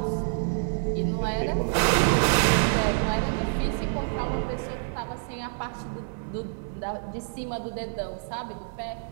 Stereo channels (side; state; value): left; silent; 60 dB below the other